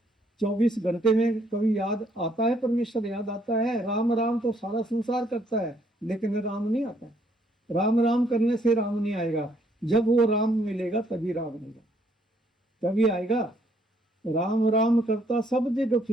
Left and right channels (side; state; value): both; normal; correlation 0.68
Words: 24 घंटे में कभी याद आता है, परमेश्वर याद आता है। राम राम तो सारा संसार करता है, लेकिन राम नहीं आता है। राम राम करने से राम नहीं आएगा, जब वो राम मिलेगा तभी राम आएगा, तभी आएगा। राम राम करता सब जगह